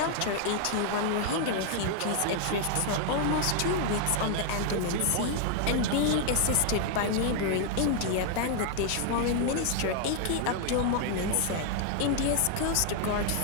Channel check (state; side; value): different; both; correlation 0.00